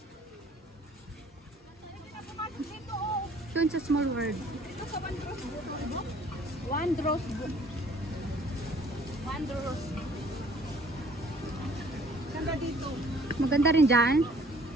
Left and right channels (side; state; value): both; normal; correlation 0.56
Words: Dito, oh. Doon sa Small World. Dito sa Wondrous. Wondrous. Wondrous. Ganda dito. Maganda rin dyan.